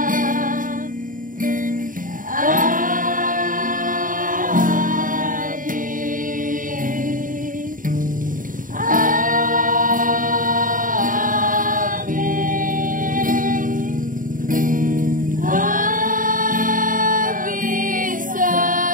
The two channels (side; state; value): left; late; 0.39 ms